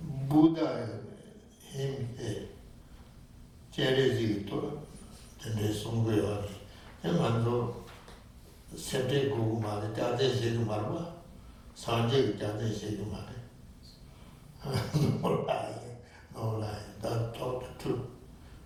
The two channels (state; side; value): identical; both; correlation 1.00